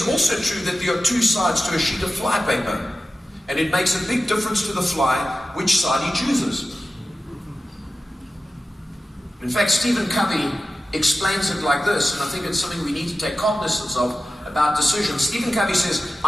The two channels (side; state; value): both; normal; correlation 0.93